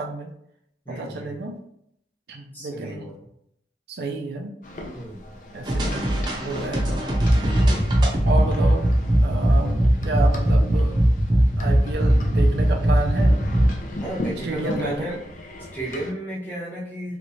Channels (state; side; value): normal; both; correlation 0.90